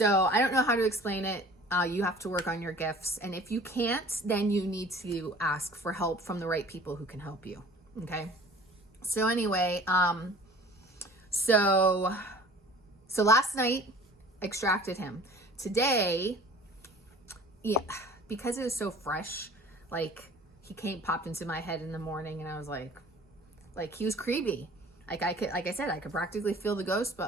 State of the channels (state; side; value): normal; both; correlation 0.46